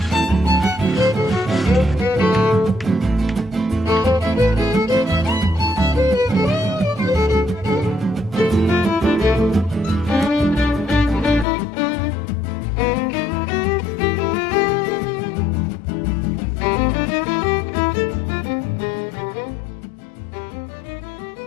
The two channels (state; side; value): drops out; right; at 11.5 s